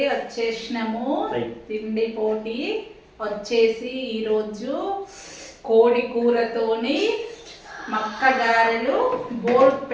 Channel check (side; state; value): both; identical; correlation 1.00